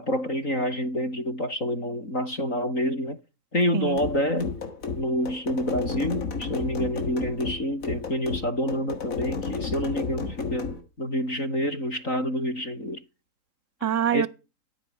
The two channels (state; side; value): late; right; 3.9 ms